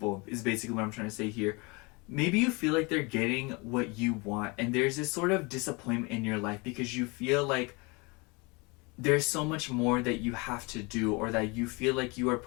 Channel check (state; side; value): quieter; right; 27.8 dB